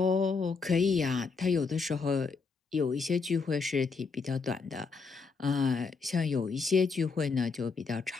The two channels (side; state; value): right; quieter; 4.7 dB